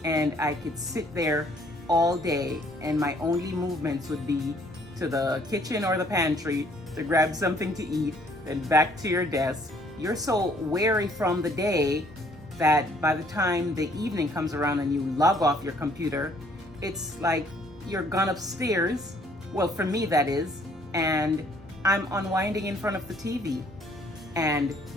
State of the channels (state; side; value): normal; both; correlation 0.62